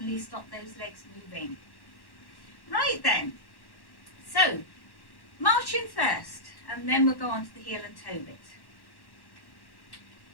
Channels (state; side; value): late; right; 1.1 ms